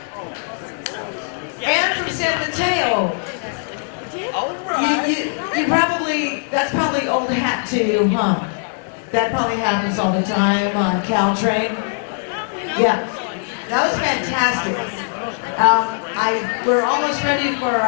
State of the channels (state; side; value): silent; right; 60 dB below the other